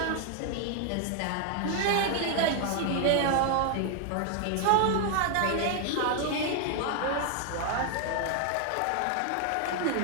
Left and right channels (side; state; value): both; different; correlation 0.00